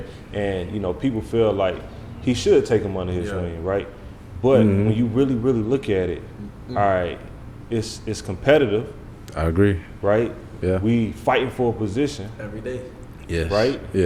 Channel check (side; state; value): both; identical; correlation 1.00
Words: and, you know, people feel like he should take him under his wing, right? But when you really, really look at it, all right, it's competitive. I agree. Right? Yeah. We fighting for a position. Every day. Yes. Right?